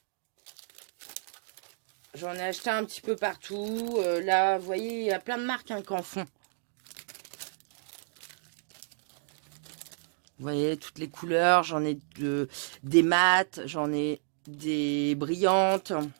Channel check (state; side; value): silent; left; digital silence